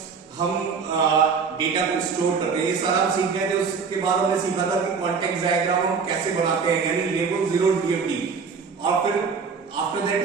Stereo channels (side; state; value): left; quieter; 5.5 dB